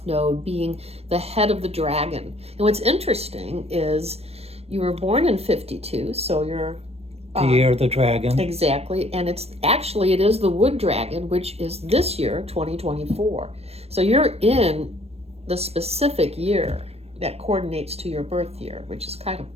Node being the head of the dragon. And what's interesting is you were born in 52, so you're The year of the dragon. exactly, and it is the wood dragon, which is this year, 2024. So you're in the specific year that coordinates to your birth year, which is kind of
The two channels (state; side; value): late; left; 0.30 ms